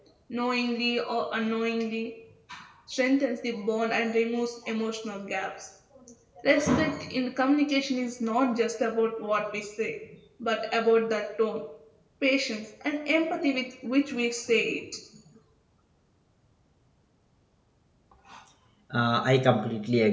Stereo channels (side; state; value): both; identical; correlation 1.00